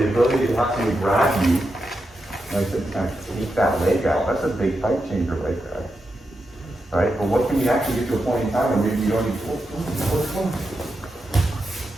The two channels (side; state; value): both; normal; correlation 0.87